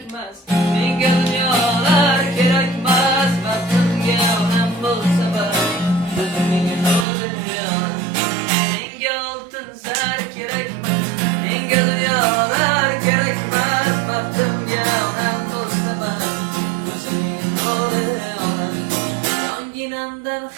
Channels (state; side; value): drops out; left; at 7.1 s